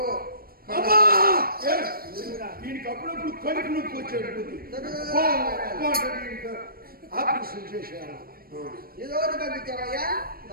దీనికి అప్పుడప్పుడు కడుపు నొప్పి వచ్చాడు. ఆపరేషన్ చేశాను. ఇదోటి పంపించావయ్యా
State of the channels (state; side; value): late; left; 0.43 ms